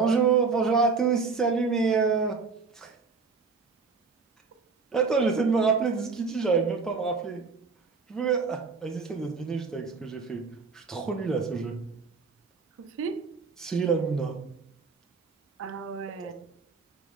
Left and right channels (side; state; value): left; quieter; 4.8 dB